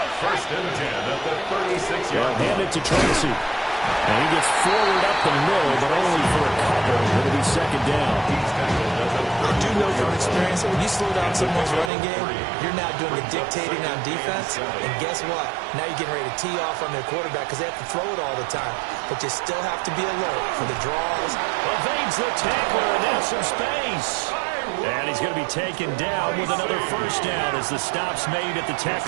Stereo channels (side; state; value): left; drops out; at 11.9 s